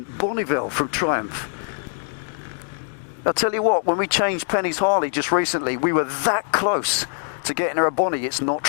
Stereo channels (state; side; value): silent; right; digital silence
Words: Bonneville from Triumph. I'll tell you what, when we changed Penny's Harley just recently, we were that close to getting her a Bonnie. It's not